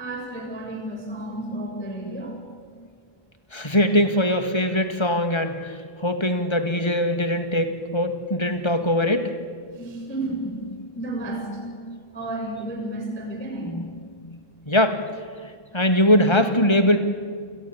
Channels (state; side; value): late; right; 1.3 ms